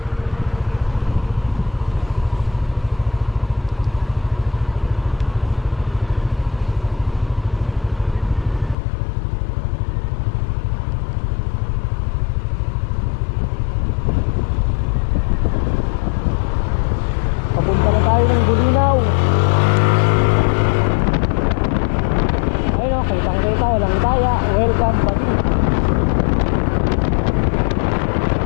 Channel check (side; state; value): right; drops out; at 8.8 s